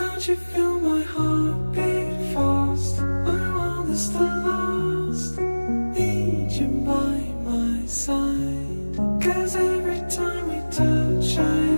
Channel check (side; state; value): both; inverted; correlation -1.00